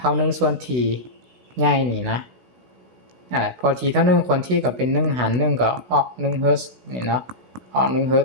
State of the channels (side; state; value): left; late; 16 ms